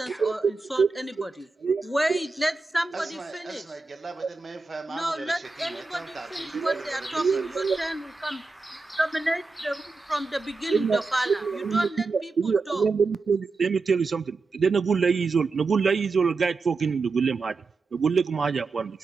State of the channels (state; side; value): quieter; left; 4.0 dB